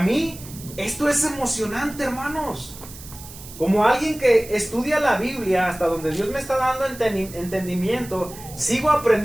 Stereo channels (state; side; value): noise; right; hiss, 16 dB below the sound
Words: esto es emocionante, hermanos. Como alguien que estudia la Biblia hasta donde Dios me está dando entendimiento, sigo